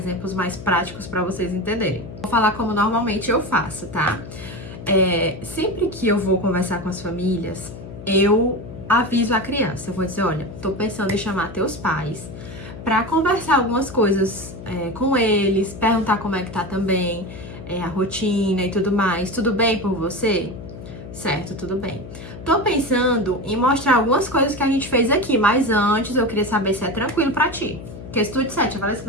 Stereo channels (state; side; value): noise; left; hum, 13 dB below the sound